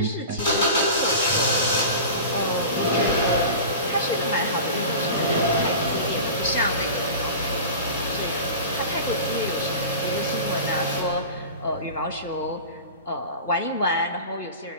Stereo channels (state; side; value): inverted; both; correlation -0.34